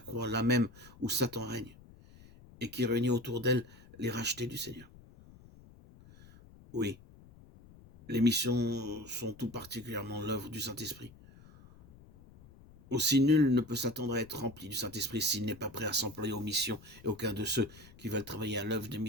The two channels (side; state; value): left; noise; rumble, 22 dB below the sound